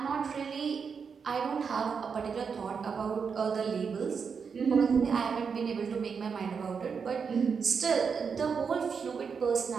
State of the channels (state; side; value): quieter; left; 6.0 dB